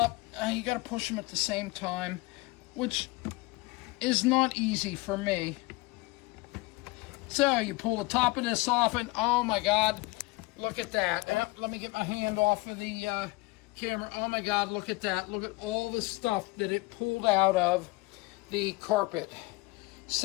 and you got to push them at the same time, which is not easy for me. So you pull the top of this off, and oh my god, look at that. Let me get my hand off of the camera. Oh my god, look at that. Look at all the stuff that it pulled out of the carpet.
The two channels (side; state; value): right; quieter; 22.8 dB